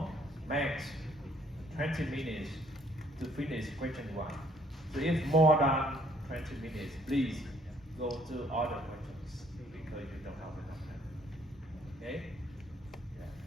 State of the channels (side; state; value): both; normal; correlation 0.64